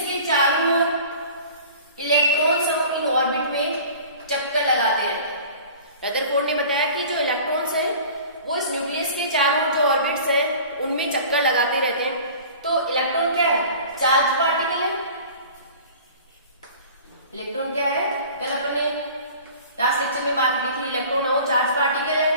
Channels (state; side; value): inverted; both; correlation -0.43